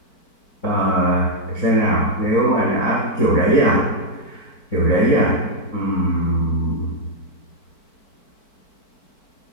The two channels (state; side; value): late; right; 4.5 ms